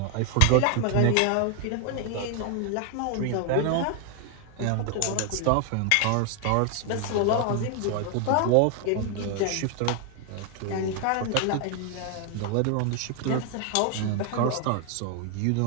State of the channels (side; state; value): both; different; correlation 0.00